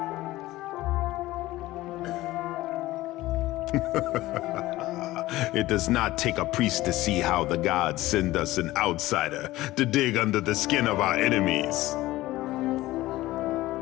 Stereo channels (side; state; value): right; quieter; 17.3 dB